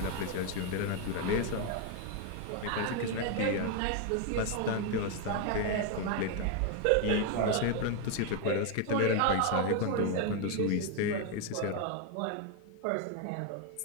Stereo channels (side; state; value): both; different; correlation 0.01